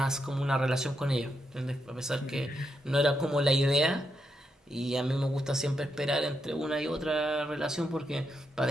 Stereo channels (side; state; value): both; normal; correlation 0.82